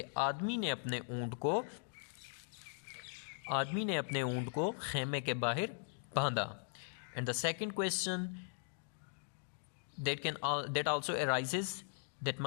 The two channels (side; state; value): right; silent; digital silence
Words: आदमी ने अपने ऊंट को खेमे के बाहर बांधा. And the second question that also arises, that